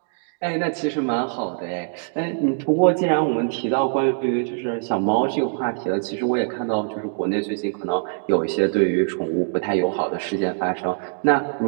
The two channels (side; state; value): left; silent; digital silence